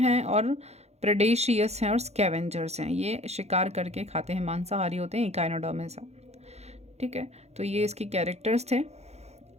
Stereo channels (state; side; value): late; left; 0.31 ms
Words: और प्रेडेशियस हैं और स्कैवेंजर्स हैं। ये शिकार करके खाते हैं, मांसाहारी होते हैं, इकाइनोडर्मिस। ठीक है, तो ये इसके कैरेक्टर्स थे।